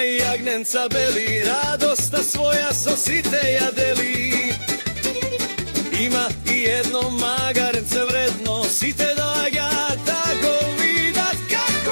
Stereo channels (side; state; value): both; inverted; correlation -1.00